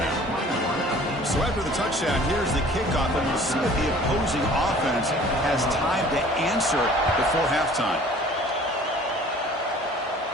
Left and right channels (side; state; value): both; normal; correlation 0.50